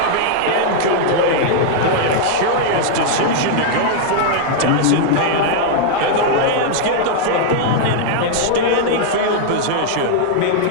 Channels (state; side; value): different; both; correlation -0.01